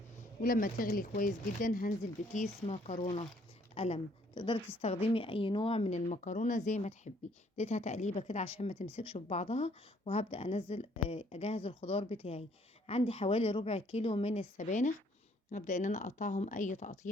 ولما تغلي كويس جدا هنزل بكيس مكرونة قلم. تقدري تستخدمي اي نوع من المكرونة زي ما تحبي. اديتها تقليبة كده عشان ما تمسكش في بعضها، وهبدأ انزل اجهز الخضار بتاعي. عندي حوالي ربع كيلو من السبانخ، هبدأ ان انا اقطعهم اي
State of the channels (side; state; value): both; normal; correlation 0.63